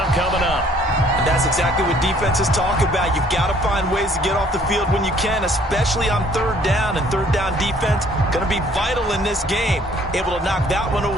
coming up. And that's exactly what defenses talk about. You've got to find ways to get off the field when you can, especially on 3rd down. And 3rd down defense going to be vital in this game. Able to knock that one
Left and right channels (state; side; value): normal; both; correlation 0.60